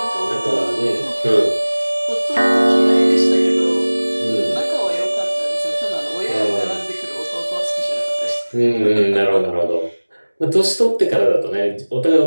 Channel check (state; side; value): inverted; both; correlation -1.00